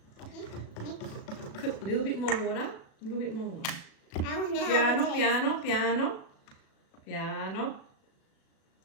Put a little bit more water. A little bit more water. Piano, piano, piano. Piano.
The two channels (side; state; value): right; late; 37 ms